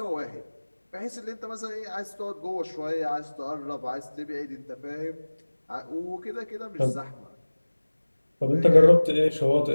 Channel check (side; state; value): both; inverted; correlation -1.00